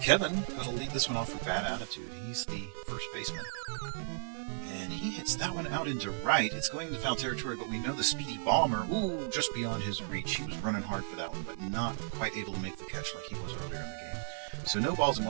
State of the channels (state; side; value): silent; left; digital silence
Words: Kevin going to lead this one off with bad attitude. He's the first baseman. And he hits that one out into right. It's going into foul territory, but we know the speedy bomber, just beyond his reach. He was running hard for that one, but not quite able to make the catch like he was earlier in the game. So no balls and